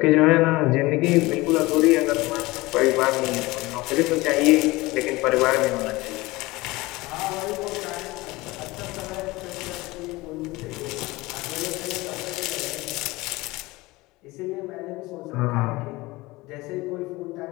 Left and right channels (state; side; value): quieter; right; 21.0 dB